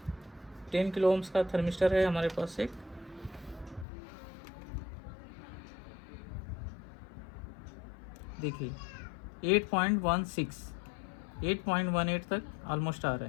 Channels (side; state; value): right; drops out; at 3.9 s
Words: 10 किलो ओम्स का थर्मिस्टर है हमारे पास एक। देखिए 8.18 तक ऑलमोस्ट आ रहा